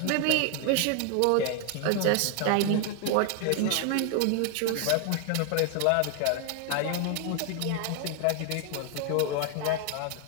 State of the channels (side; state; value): both; different; correlation 0.00